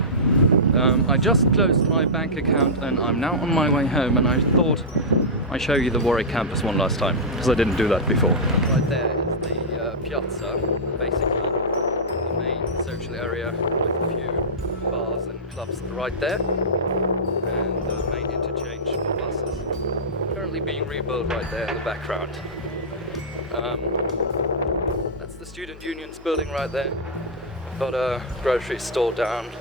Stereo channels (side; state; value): both; normal; correlation -0.11